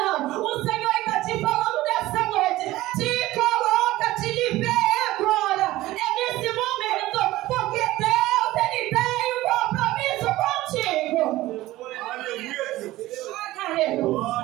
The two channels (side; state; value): left; quieter; 17.0 dB